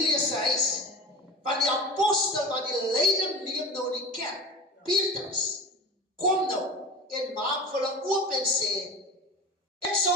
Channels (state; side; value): normal; both; correlation 0.33